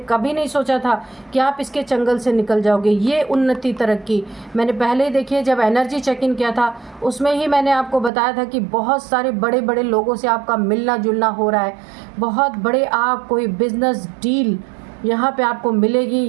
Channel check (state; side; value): drops out; left; at 8.1 s